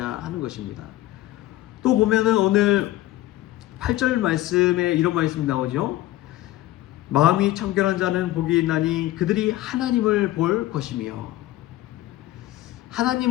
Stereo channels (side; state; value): right; quieter; 15.9 dB